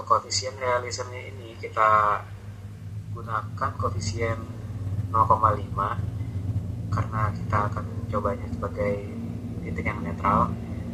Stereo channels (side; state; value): both; identical; correlation 1.00